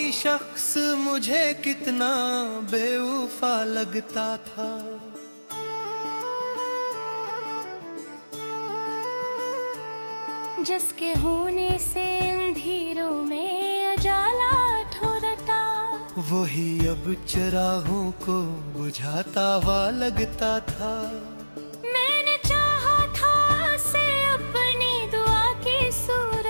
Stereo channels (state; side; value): inverted; both; correlation -1.00